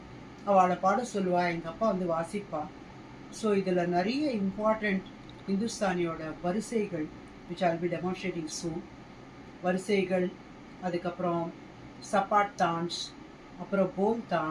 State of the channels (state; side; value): identical; both; correlation 1.00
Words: அவளை பாட சொல்லுவா, எங்கள் அப்பா வந்து வாசிப்பா. ஸோ இதில் நிறைய இம்பார்ட்டண்ட் இந்துஸ்தானியோட வரிசைகள் which I'll be demonstrating soon. வரிசைகள், அதுக்கப்புறம் சப்பாட் தான்ஸ், அப்புறம் போல்